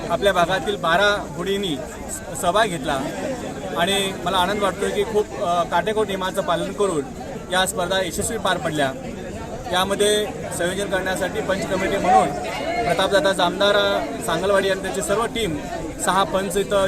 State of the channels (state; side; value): identical; both; correlation 1.00